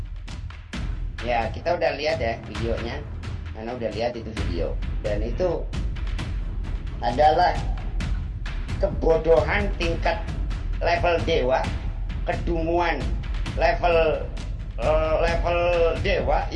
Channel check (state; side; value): identical; both; correlation 1.00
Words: Ya, kita udah lihat ya videonya. Karena udah lihat itu video. Dan itu adalah kebodohan tingkat level dewa, kedunguan level dewa